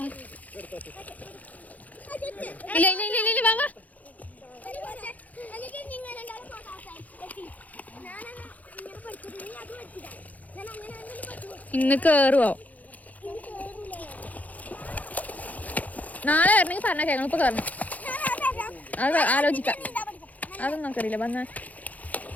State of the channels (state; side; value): late; right; 0.076 ms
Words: ഇല്ല ഇല്ല ഇല്ല ഇല്ല വാ വാ. ഇന്ന് കേറുവോ? നാളെ വരണമെങ്കിൽ പറഞ്ഞ കേൾക്കണം. ഇപ്പൊ കയറണം, അത് ആലോചിക്കാം. അതൊന്നും നമുക്കറിയില്ല. വന്ന